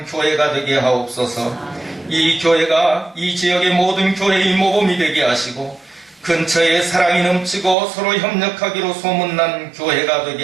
교회가 되게 하옵소서. 이 교회가 이 지역의 모든 교회의 모범이 되게 하시고 근처에 사랑이 넘치고 서로 협력하기로 소문난 교회가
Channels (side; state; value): left; drops out; at 7.8 s